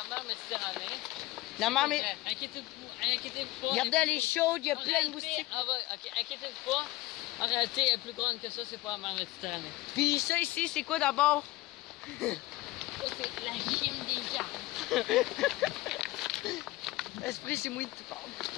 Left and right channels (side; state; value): right; quieter; 19.0 dB